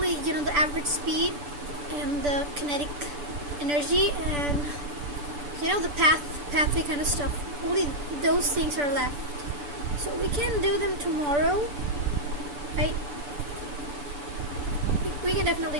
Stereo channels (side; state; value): left; late; 6.9 ms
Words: the average speed and the kinetic energy and the pathway kind of stuff. Only those things are left. So we can do them tomorrow, right? We can definitely